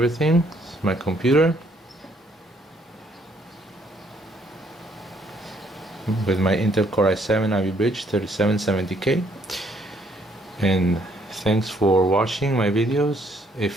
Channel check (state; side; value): normal; both; correlation 0.67